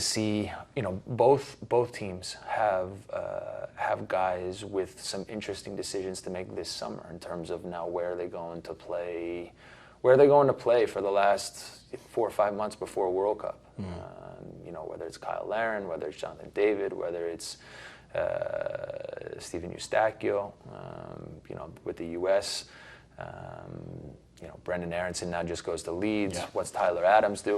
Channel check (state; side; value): identical; both; correlation 1.00